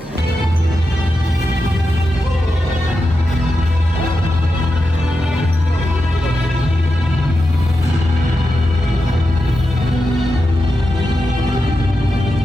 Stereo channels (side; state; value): both; normal; correlation 0.89